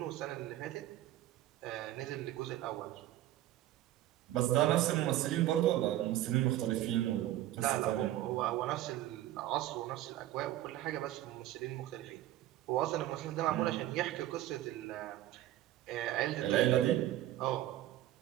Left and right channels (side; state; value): left; quieter; 14.1 dB